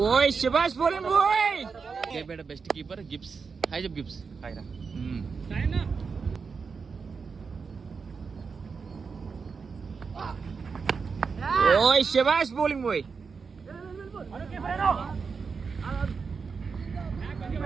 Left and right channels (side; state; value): left; quieter; 5.3 dB